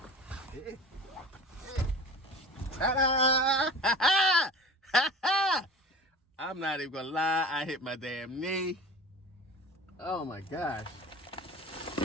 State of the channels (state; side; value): normal; both; correlation 0.37